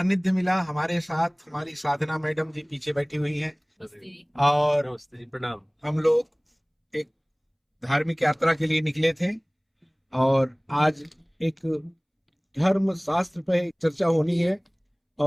मिला हमारे साथ। हमारी साधना मैडम जी पीछे बैठी हुई हैं अरे, और नमस्ते जी, प्रणाम। हम लोग एक धार्मिक यात्रा के लिए निकले थे और आज एक धर्म शास्त्र पे चर्चा होनी है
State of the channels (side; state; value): both; identical; correlation 1.00